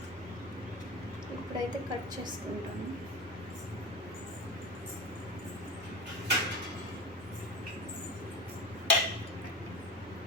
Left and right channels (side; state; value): both; normal; correlation 0.26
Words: ఇప్పుడైతే కట్ చేసుకుంటాను.